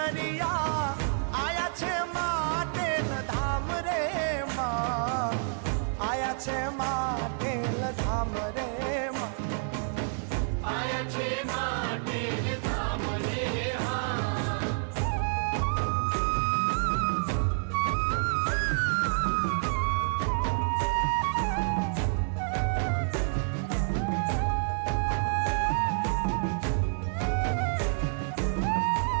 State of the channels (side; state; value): left; silent; 59 dB below the other